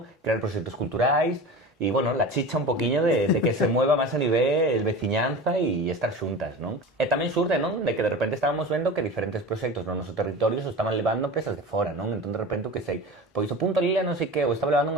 crear proxectos culturais e, bueno, la chicha un poquinho de que se mueva máis a nivel veciñanza e estar xuntas, non? E tamén xurde, non? De que de repente estábamos vendo que diferentes proxectos no noso territorio se estaban levando empresas de fora, non? Entón de repente, que sei, pois o Punto Lila non sei que, o estaba levando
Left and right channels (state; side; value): normal; both; correlation 0.33